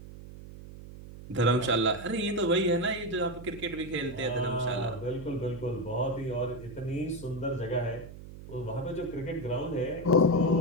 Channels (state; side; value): noise; right; hum, 14 dB below the sound